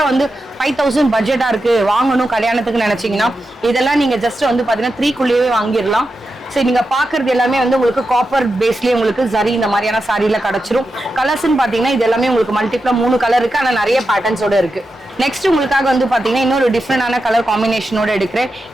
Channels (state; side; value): normal; both; correlation 0.89